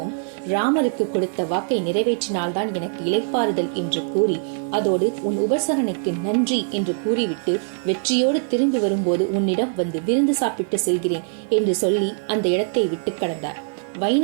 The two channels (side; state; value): left; silent; digital silence